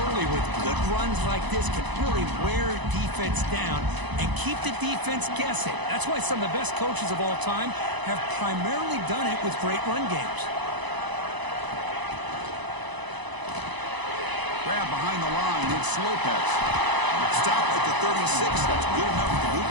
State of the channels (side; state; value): left; late; 1.0 ms